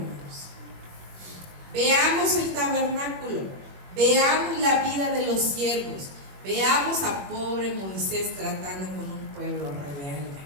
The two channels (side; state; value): left; late; 21 ms